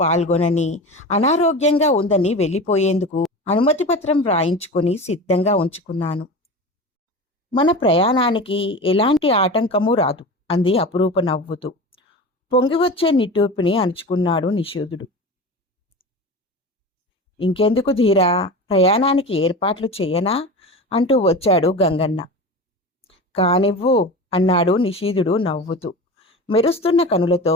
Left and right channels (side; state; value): both; normal; correlation 0.30